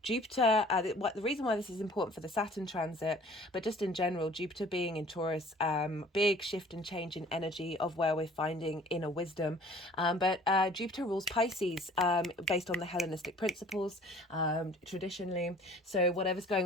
Jupiter, the reason why this is important for the Saturn transit, but just in general, Jupiter being in Taurus, big shift and change in energy of where we're finding inner wisdom. But Jupiter rules Pisces, based on the Hellenistic principles, traditionally. So whatever's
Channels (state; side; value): normal; both; correlation 0.51